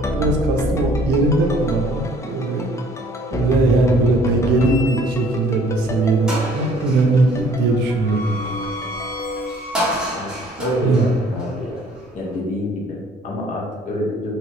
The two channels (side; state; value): both; normal; correlation 0.57